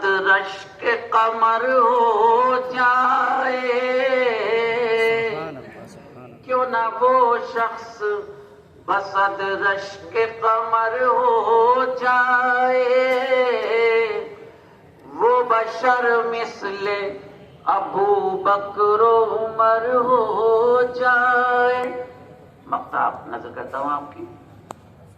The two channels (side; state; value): both; identical; correlation 1.00